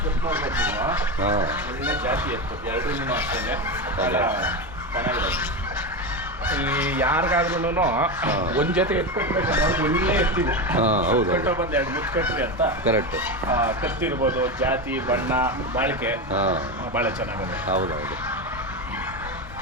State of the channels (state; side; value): normal; both; correlation 0.17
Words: ಒಳ್ಳೆ ಜಾತಿ ಎತ್ತು 2 ಅಷ್ಟೇ ಚೆನ್ನಾಗಿದೆ. ಈ ಯಾರಿಗಾದ್ರೂ ಒಂದ್ ಜೊತೆ ಎತ್ಕೊಟ್ಬೇಕು ಒಳ್ಳೆ ಎತ್ತಿದೆ. ಕಟ್ಟೋ ಬಂದು 2 ಮುತ್ತು ಕಟ್ರಿ ಅಂತ ಕರೆಕ್ಟ್. ಕತ್ತಿರ್ಬೋದು, ಜಾತಿ, ಬಣ್ಣ, ಬಾಳಿಕೆ ಬಹಳ ಚೆನ್ನಾಗಿದೆ. ಹೌದೌದು.